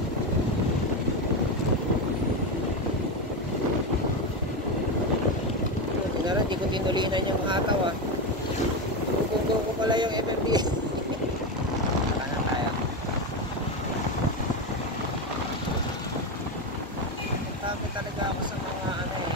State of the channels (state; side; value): normal; both; correlation 0.14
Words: Hindi ko tinulinan yung hataw ah. Tugong ko pala yung MMD. Sana tayo. Takot talaga ako sa mga ano eh.